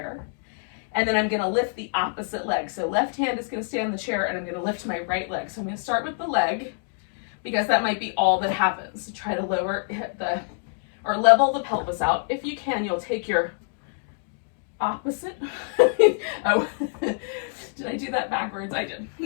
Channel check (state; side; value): silent; right; digital silence